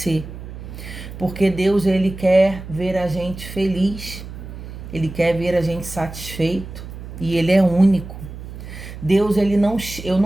Porque Deus, ele quer ver a gente feliz, ele quer ver a gente satisfeito, e ele é único. Deus, eu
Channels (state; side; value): noise; right; hum, 12 dB below the sound